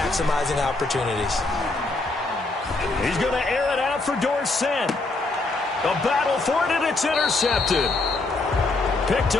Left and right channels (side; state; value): right; quieter; 3.3 dB